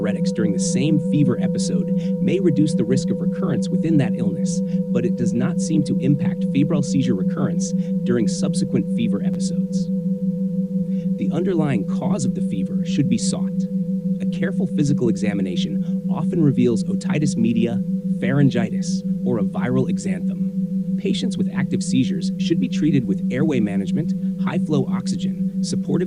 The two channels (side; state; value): both; identical; correlation 1.00